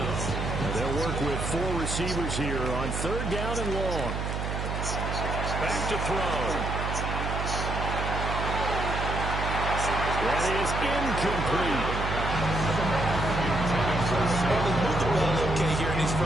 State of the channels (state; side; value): noise; right; hum, 3 dB below the sound